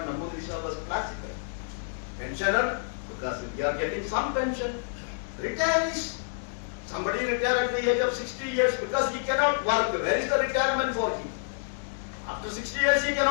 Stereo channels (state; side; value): silent; right; digital silence